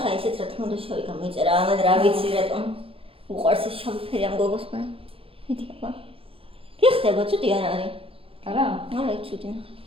ისეც რა თქმა უნდა შავი გამოიწერა, ამან რა ვიცი რატომ უყვარს ეს შავი ფერი ამ გოგოს მე. მიდი აბა. კი ხდება, ცუდი არ არის. არა? არა, ცუდი ნახე.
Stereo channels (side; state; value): left; late; 0.27 ms